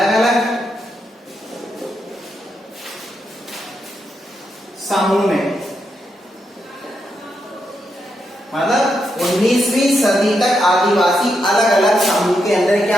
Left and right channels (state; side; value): normal; both; correlation 0.82